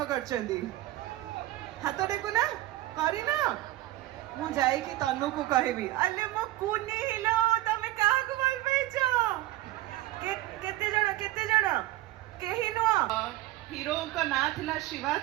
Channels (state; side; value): quieter; left; 16.2 dB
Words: करचंदी हाथ टेकु ना करी ना मु जाई कि तनु को कहबी अले मो कुनी हिलो तमे काहा को भल पैचो केते जण केही नो हीरो का ना थिला शिवा